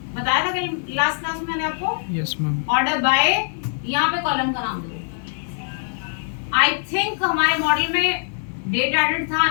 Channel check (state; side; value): silent; right; 56 dB below the other